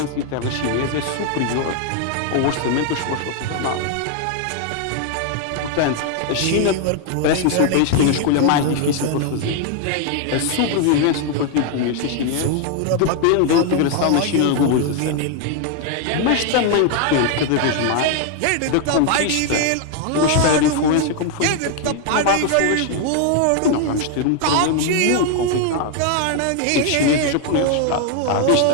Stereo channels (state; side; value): different; both; correlation 0.00